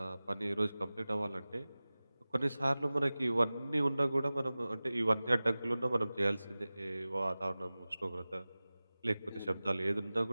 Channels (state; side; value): inverted; both; correlation -0.97